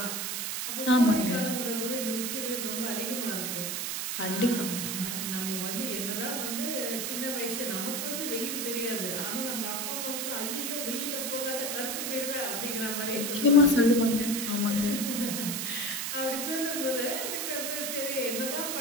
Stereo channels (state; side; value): noise; right; hiss, 2 dB below the sound